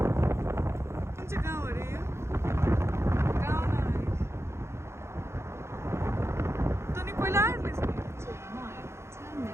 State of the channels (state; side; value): late; left; 0.13 ms